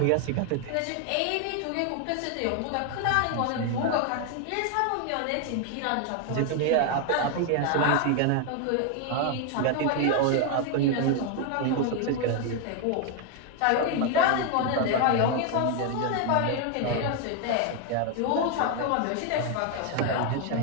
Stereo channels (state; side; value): different; both; correlation 0.01